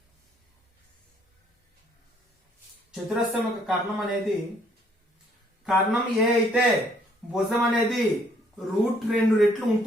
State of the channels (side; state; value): both; normal; correlation 0.65